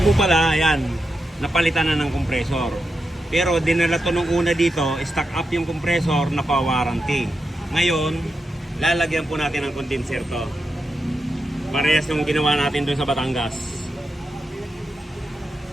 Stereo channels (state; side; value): normal; both; correlation 0.87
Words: po pala, yan, napalitan na ng compressor. Pero dinala to nung una dito, stock up yung compressor na pa-warranty. Ngayon, lalagyan po natin ng condenser to. Parehas yung ginawa natin dun sa Batangas.